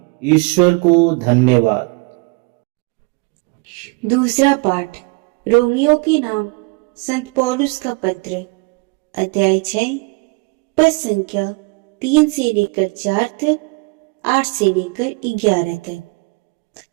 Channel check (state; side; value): quieter; left; 28.6 dB